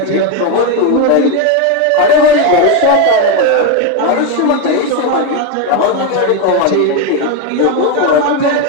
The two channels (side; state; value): both; different; correlation 0.02